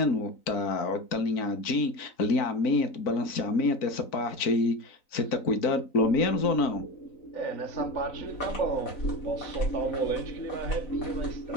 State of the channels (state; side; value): late; right; 3.9 ms